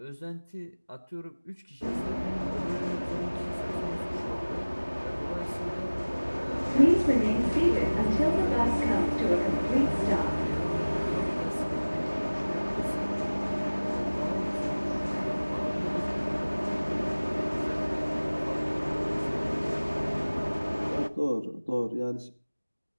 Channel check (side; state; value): both; inverted; correlation -1.00